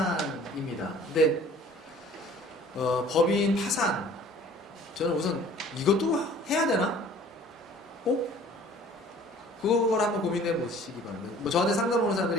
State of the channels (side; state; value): both; normal; correlation 0.50